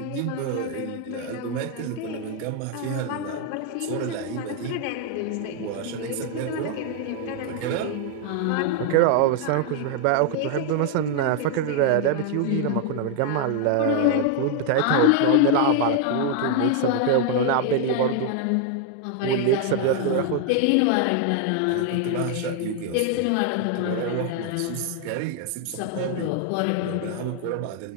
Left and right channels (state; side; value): different; both; correlation 0.00